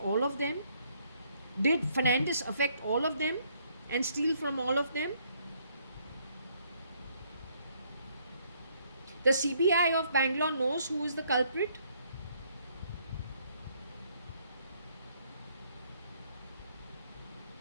of them? Did Fernandez affect all of them and steal from all of them? The CBI of Bangalore knows who is the culprit.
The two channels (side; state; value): both; inverted; correlation -0.68